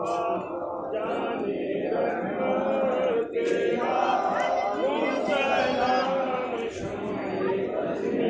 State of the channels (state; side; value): identical; both; correlation 1.00